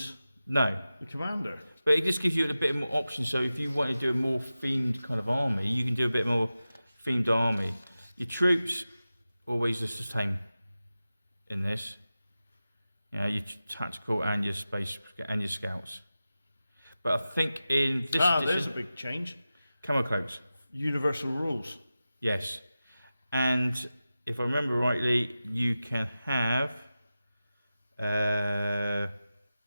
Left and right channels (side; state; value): both; inverted; correlation -0.94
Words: No, the commander. but it just gives you a bit more options. So if you want to do a more themed kind of army, you can do a bit more themed army. Your troops always the same in this. You know, your tactical and your space and your scouts. But I think in this there's a edition, big change. camo cloaks. Universal rules. Yes, and if I remember rightly, you can have.